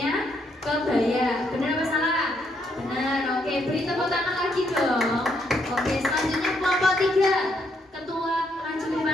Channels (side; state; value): both; normal; correlation 0.74